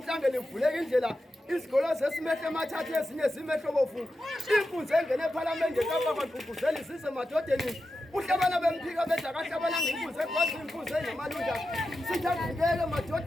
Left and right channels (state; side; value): normal; both; correlation 0.90